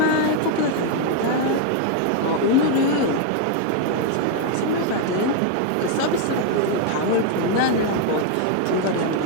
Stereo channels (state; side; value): different; both; correlation 0.00